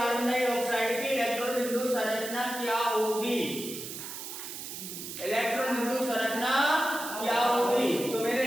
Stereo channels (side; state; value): right; noise; hiss, 9 dB below the sound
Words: डाइऑक्साइड की इलेक्ट्रॉन बिंदु संरचना क्या होगी? इलेक्ट्रॉन बिंदु संरचना